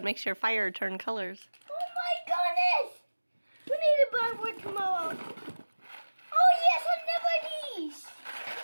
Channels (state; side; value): inverted; both; correlation -1.00